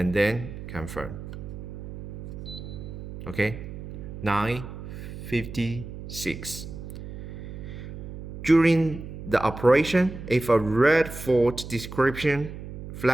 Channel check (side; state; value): right; noise; hum, 10 dB below the sound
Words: then confirm. Okay, 9:56. During the operation, if a red fault description